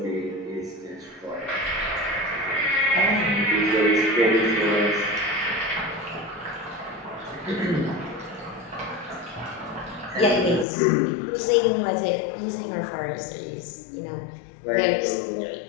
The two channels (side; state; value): right; drops out; at 10.7 s